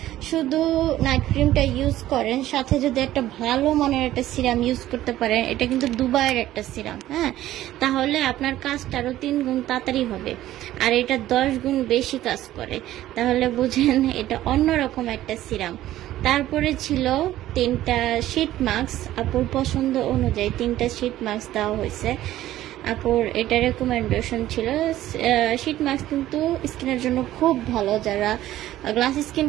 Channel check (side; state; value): left; quieter; 14.1 dB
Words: শুধু নাইট ক্রিমটা ইউজ করেন, সাথে যদি একটা ভালো মানের একটা সিরাম ইউজ করতে পারেন, এটা কিন্তু দুবাইয়ের একটা সিরাম, হ্যাঁ, তাহলে আপনার কাজটা আরও 3 গুণ তাড়াতাড়ি হবে। আর এটা 10 গুণ বেশি কাজ করে, তাহলে বুঝেন এটা অন্যরকম একটা সিরাম। তারপরে ছিল 3টা শীট মাস্ক, আপুর পছন্দ অনুযায়ী 3টা শীট মাস্ক দেওয়া হয়েছে। আপুর এটা রেকমেন্ডেশন ছিল। শীট মাস্ক কিন্তু স্কিনের জন্য খুব ভালো, যারা গ্লাস স্কিন